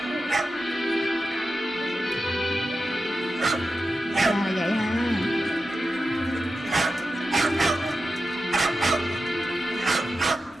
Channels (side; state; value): both; normal; correlation 0.91